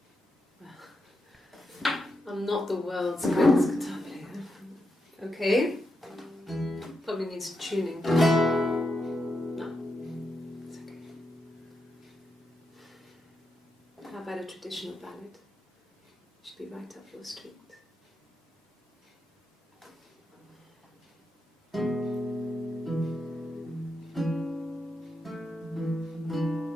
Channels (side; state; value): both; normal; correlation 0.85